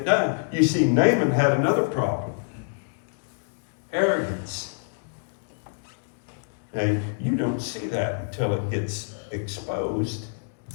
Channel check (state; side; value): silent; right; digital silence